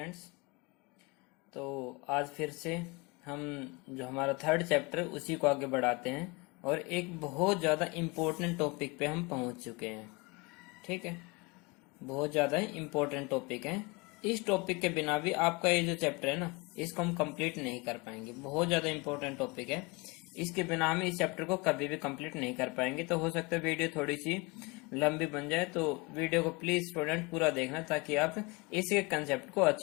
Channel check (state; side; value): quieter; right; 26.3 dB